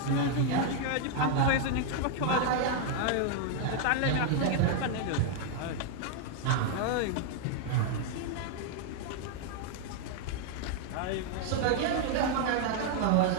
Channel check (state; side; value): different; both; correlation 0.00